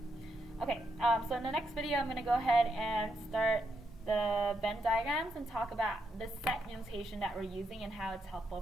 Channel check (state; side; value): normal; both; correlation 0.80